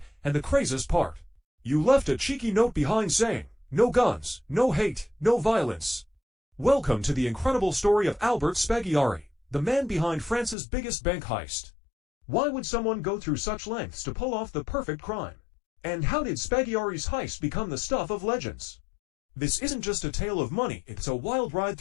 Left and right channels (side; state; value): right; drops out; at 10.6 s